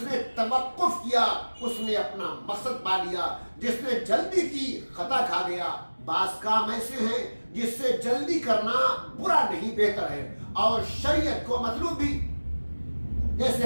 نے توقف کیا اس نے اپنا مقصد پا لیا، جس نے جلدی کی خطا کھا گیا۔ بعض کام ایسے ہیں جس سے جلدی کرنا برا نہیں بہتر ہے، اور شریعت کو مطلوب بھی،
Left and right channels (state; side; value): inverted; both; correlation -1.00